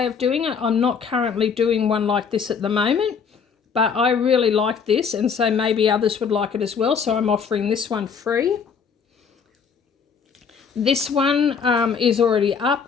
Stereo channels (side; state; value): right; quieter; 6.2 dB